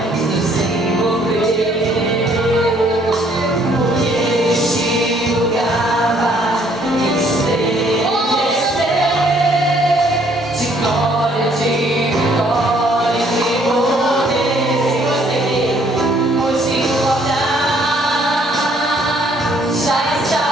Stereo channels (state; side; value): normal; both; correlation 0.64